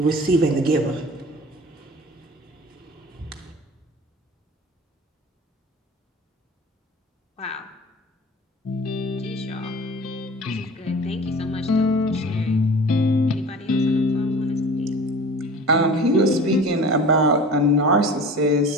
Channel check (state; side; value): normal; both; correlation 0.39